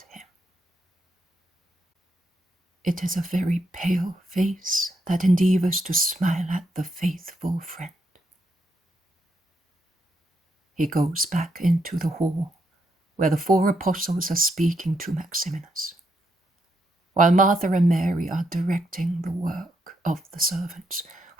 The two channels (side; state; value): both; normal; correlation 0.79